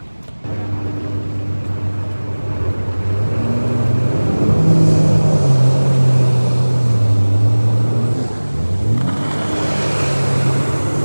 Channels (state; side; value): inverted; both; correlation -1.00